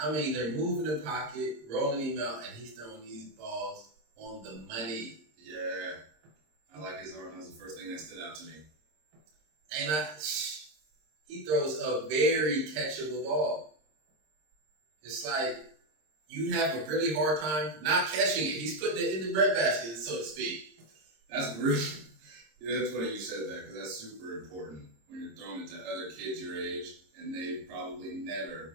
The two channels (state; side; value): late; left; 26 ms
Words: mean, they're moving the pocket, rolling him out, and he's throwing these balls on the money. Yeah, I like his arm. That was the first thing that stood out to me. He throws a very catchable ball. It's like you have a really hard time not catching it. He's putting it in the breadbasket, so to speak. That's really, that's funny you said that because that's super important when you're throwing it to other kids your age and they've probably